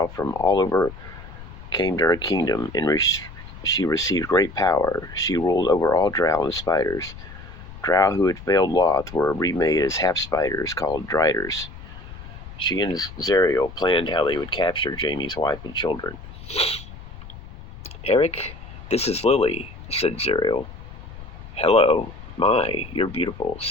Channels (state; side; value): noise; left; rumble, 15 dB below the sound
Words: from all over came to her kingdom, and she received great power. She ruled over all Drow and spiders. Drow who had failed Lolth were remade as half-spiders called Driders. She and Zariel planned how they would capture Jamie's wife and children. "Eric, this is Lily," said Zariel. "Hello. My, you're beautiful,"